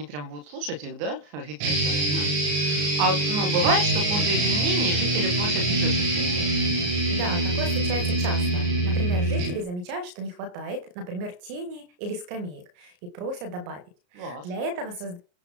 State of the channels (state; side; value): late; left; 34 ms